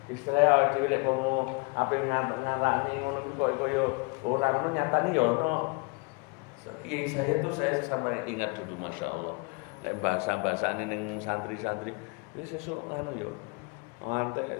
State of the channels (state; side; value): quieter; right; 30.9 dB